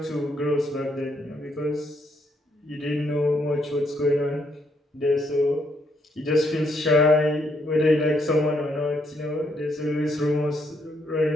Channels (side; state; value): both; normal; correlation 0.74